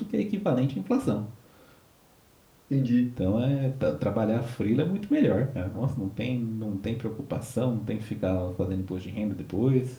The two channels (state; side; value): identical; both; correlation 1.00